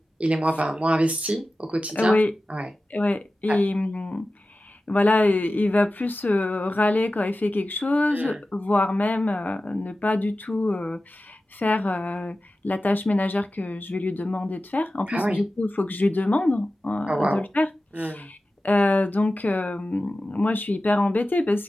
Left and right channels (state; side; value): normal; both; correlation 0.94